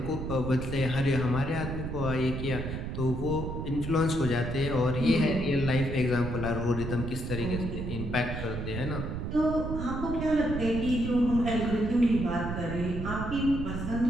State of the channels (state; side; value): noise; right; rumble, 5 dB below the sound